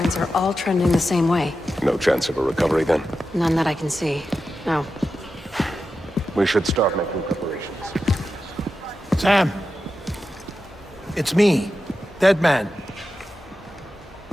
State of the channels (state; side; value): normal; both; correlation 0.91